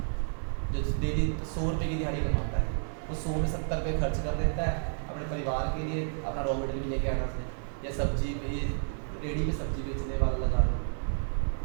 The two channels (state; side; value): silent; left; digital silence